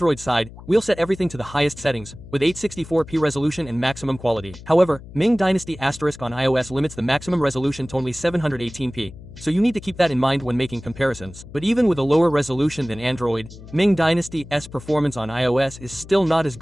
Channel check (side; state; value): left; noise; hum, 17 dB below the sound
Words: side, we'll set everything to the highest settings, with 864p resolution and maximum quality. However, Ming Dynasty Asterisk on iOS limits the maximum resolution to only 718p, so you need to keep that in mind when making comparisons. But even with a lower resolution than Android, Ming Dynasty's performance on iOS is still not as